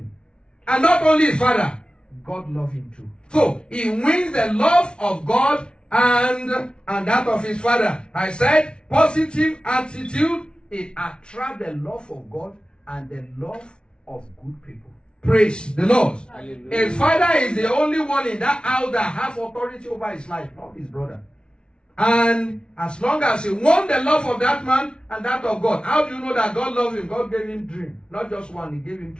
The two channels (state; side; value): late; right; 0.056 ms